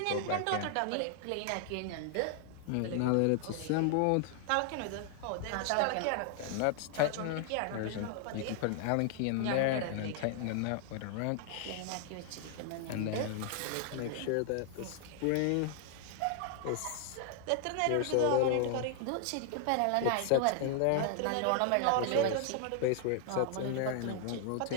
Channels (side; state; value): both; different; correlation 0.00